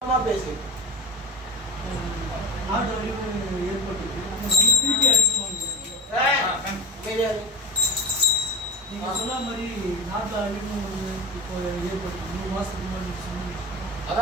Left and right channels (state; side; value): normal; both; correlation 0.29